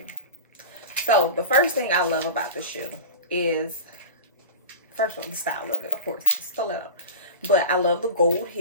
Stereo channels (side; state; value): both; inverted; correlation -0.34